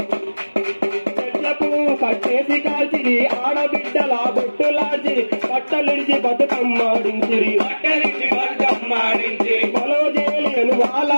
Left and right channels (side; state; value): both; inverted; correlation -1.00